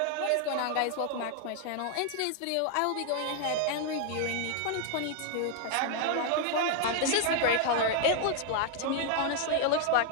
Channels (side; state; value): both; different; correlation 0.00